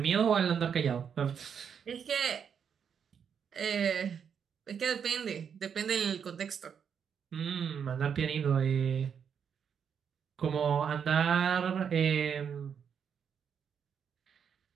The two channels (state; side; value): quieter; left; 7.4 dB